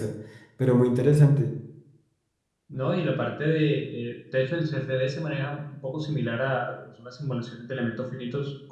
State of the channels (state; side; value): identical; both; correlation 1.00